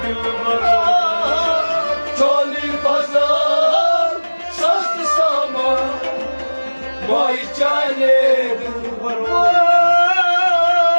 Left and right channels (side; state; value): both; inverted; correlation -1.00